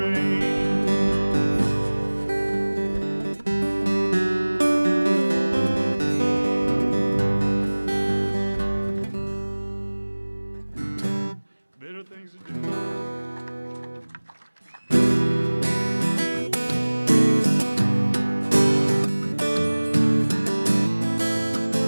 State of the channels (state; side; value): inverted; both; correlation -1.00